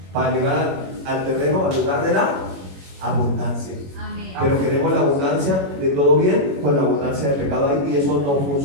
Para llegar al terreno, al lugar de la abundancia. Amén. Pero queremos la abundancia de todo bien con la abundancia de pecado ahí, y eso no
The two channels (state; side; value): late; left; 21 ms